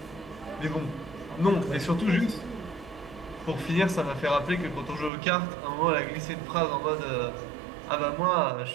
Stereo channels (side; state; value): left; drops out; at 5.1 s